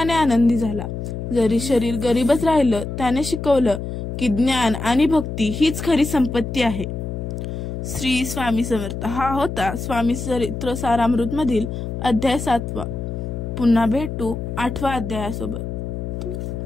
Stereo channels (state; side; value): noise; left; hum, 5 dB below the sound